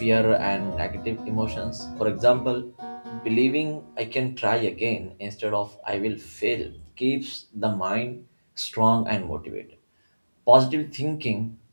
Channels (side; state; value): both; inverted; correlation -1.00